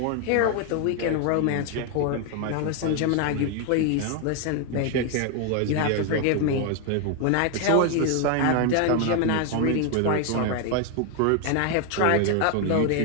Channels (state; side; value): different; both; correlation 0.01